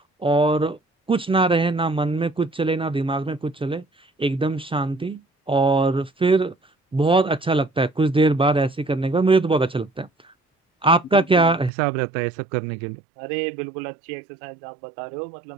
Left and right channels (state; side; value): drops out; left; at 11.7 s